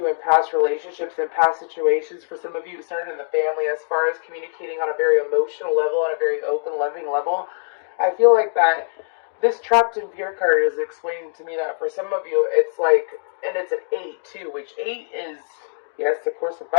in past relationships and past situations, for some of you, it started in the family as far as communicating on a very emotional level, on a very open, loving level. I feel like that this trapped in fear card is explaining to me that for some of you, it's like, and it's an 8 too, which 8 is, yes, of course,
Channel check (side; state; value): right; silent; digital silence